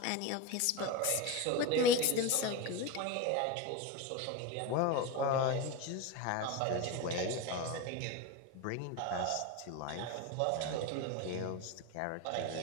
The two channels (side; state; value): both; different; correlation 0.06